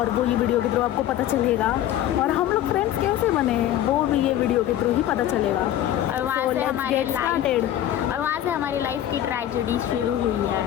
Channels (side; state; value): right; quieter; 12.1 dB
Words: वो ये वीडियो के थ्रू आपको पता चलेगा। और हम लोग फ्रेंड्स कैसे बने वो भी ये वीडियो के थ्रू ही पता चलेगा। और वहाँ से हमारी लाइफ की ट्रेजेडी शुरू हुई है